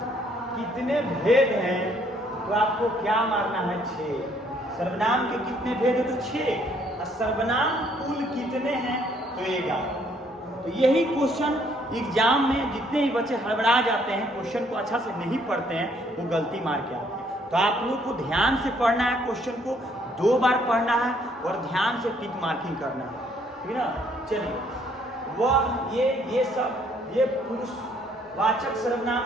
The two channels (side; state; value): both; normal; correlation 0.66